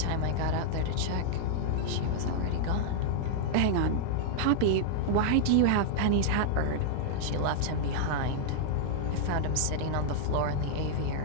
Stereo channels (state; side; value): different; both; correlation -0.01